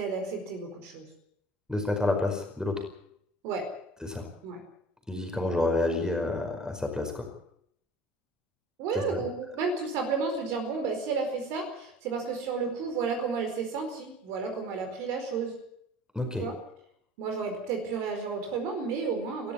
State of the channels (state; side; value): normal; both; correlation 0.45